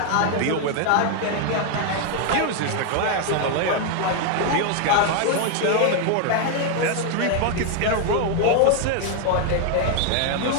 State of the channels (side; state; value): both; different; correlation 0.01